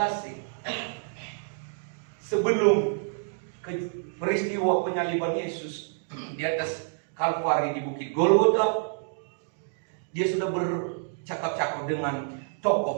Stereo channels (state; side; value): silent; left; digital silence